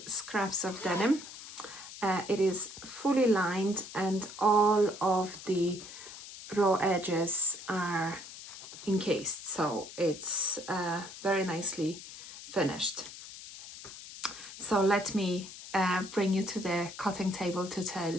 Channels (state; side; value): noise; left; hiss, 13 dB below the sound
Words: scraps of denim. It is fully lined and all of the raw edges are encased, so it's very nicely finished. So let me bring you to the cutting table to tell